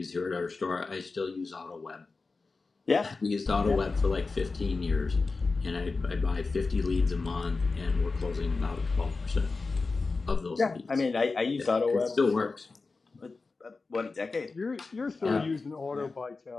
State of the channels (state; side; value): quieter; right; 4.0 dB